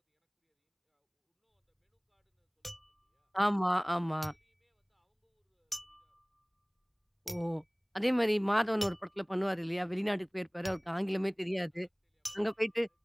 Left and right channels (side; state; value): both; identical; correlation 1.00